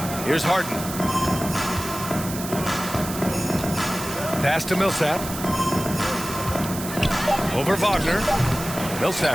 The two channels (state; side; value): noise; right; hiss, 9 dB below the sound